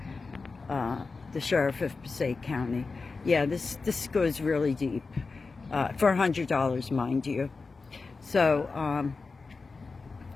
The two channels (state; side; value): quieter; right; 4.2 dB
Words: the sheriff of Passaic County. Yeah, this goes really deep, for $100, mind you. So,